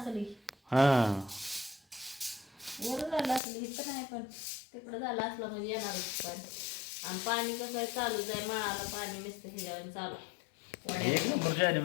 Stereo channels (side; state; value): right; drops out; at 3.4 s